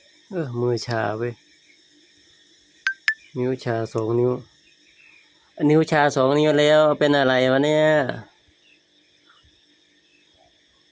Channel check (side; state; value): both; identical; correlation 1.00